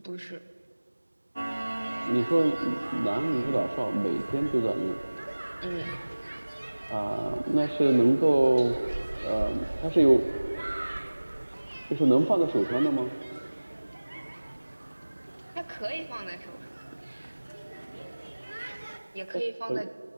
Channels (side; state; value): both; inverted; correlation -1.00